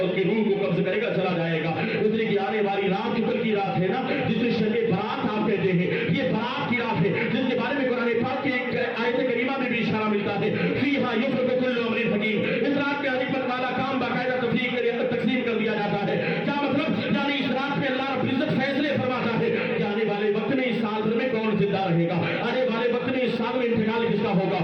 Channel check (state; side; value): identical; both; correlation 1.00